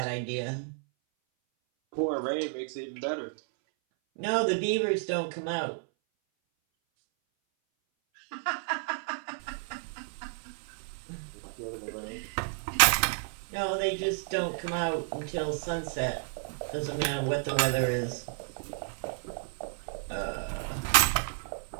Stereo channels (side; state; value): left; silent; 57 dB below the other